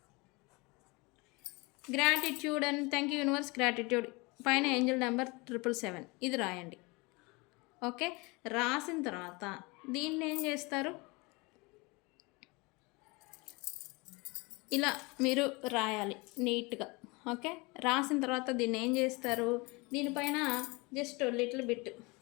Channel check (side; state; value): right; quieter; 26.4 dB